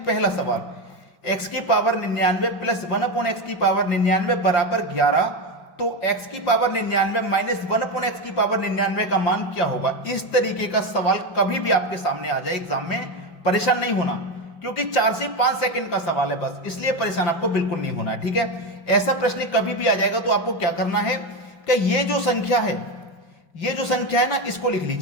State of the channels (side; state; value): right; late; 5.8 ms